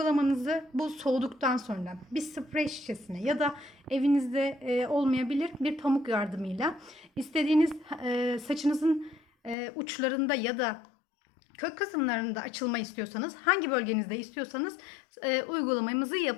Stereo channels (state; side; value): drops out; right; at 9.6 s